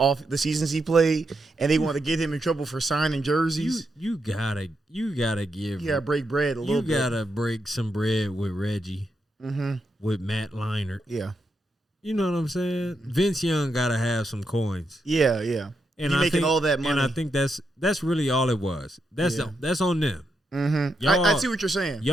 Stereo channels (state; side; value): normal; both; correlation 0.83